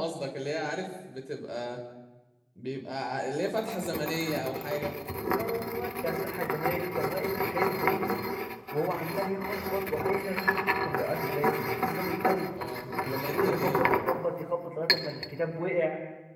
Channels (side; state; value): both; identical; correlation 1.00